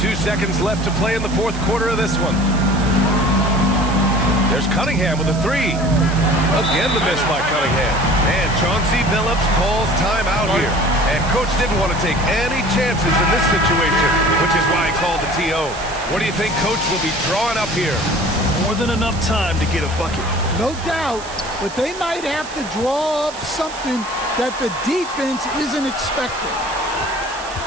Seconds left to play in the fourth quarter of this one. There's Cunningham with a three. Again, the miss by Cunningham. And Chauncey Billups calls timeout here. And coach didn't want to take any chances in this situation, which is why he called the TO. What do you think coach will be drawing up here? More than enough time to get a bucket. No doubt, but they might have to draw up something that the defense isn't expecting.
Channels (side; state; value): right; noise; hiss, 15 dB below the sound